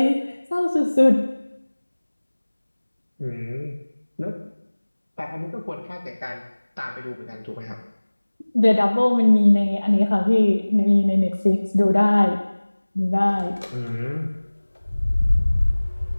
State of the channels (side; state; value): both; inverted; correlation -1.00